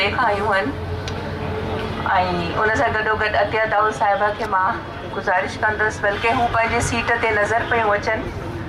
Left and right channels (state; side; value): identical; both; correlation 1.00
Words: खां आयूं आहिनि ऐं उन सां गॾोगॾु अतिया दाऊद साहिबा खे मां गुज़ारिश कंदसि बल्कि हू पंहिंजी सीट ते नज़र पियूं अचनि